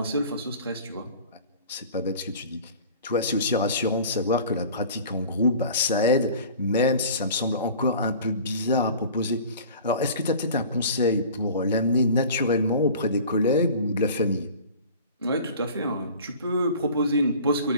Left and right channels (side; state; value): both; inverted; correlation -0.43